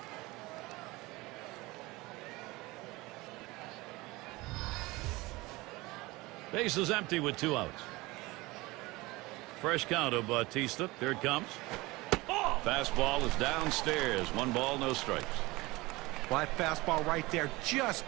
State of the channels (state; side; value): quieter; left; 21.6 dB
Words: Base is empty with 2 outs. Fresh count of Bautista. Here it comes. Fastball is downstairs. 1 ball, no strikes. Well, that fastball right there just